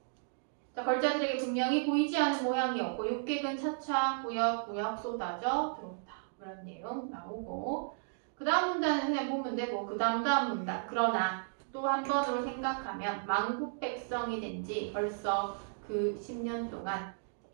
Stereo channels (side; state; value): left; silent; digital silence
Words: 자, 걸자들에게 분명히 보이지 않은 모양이었고 육객은 차차 구역구역 쏟아져 들어온다. 그런 내용 나오고 그 다음 문단은 그냥 보면 되고 그 다음 문단. 그러나 또 한 번으로 생각하면 만국 백성이 된 지 벌써 그 10년 동안